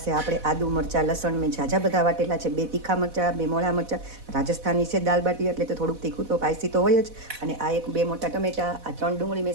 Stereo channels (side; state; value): left; late; 4.1 ms